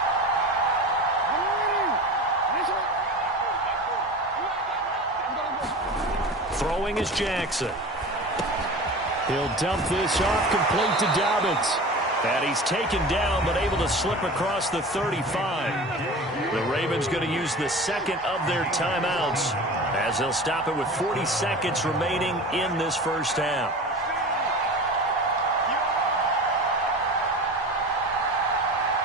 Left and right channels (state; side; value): normal; both; correlation 0.34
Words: Throwing is Jackson. He'll dump this off, complete to Dobbins. And he's taken down, but able to slip across the 35. The Ravens going to use the 2nd of their timeouts as they'll stop it with 40 seconds remaining in this 1st half.